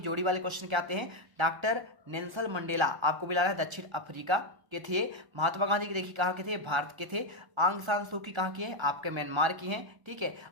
वाले क्वेश्चन क्या आते हैं, डॉक्टर नेल्सन मंडेला आपको मिला है दक्षिण अफ्रीका के थे। महात्मा गांधी के देखिए कहाँ के थे, भारत के थे। आंग सान सू की कहाँ की है, आपके म्यांमार की हैं। ठीक है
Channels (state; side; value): late; left; 1.3 ms